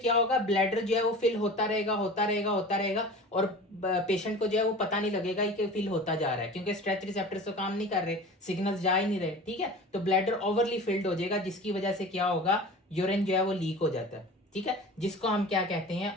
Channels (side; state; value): both; normal; correlation 0.37